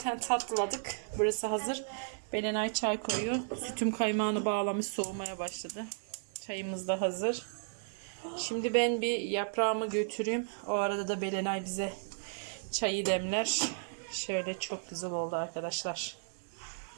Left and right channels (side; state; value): left; silent; digital silence